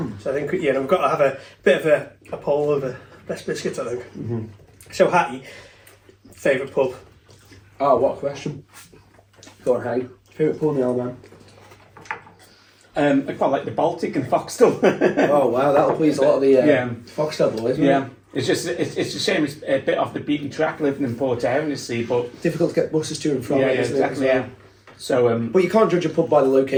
So I think we've got to have a bit of a poll of the best biscuits, I think. So Hatty, favourite pub? Oh, what a question. Go on, Hatty. Favourite pub in the old man? I quite like the Baltic and Foxtel. Oh wow, that'll please a lot of the Foxtel boys, isn't it? It's a shame it's a bit off the beaten track living in Port Erin, you see, but difficult to get buses to and from. Exactly. Yeah. So, but you can't judge a pub by the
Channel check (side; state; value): both; identical; correlation 1.00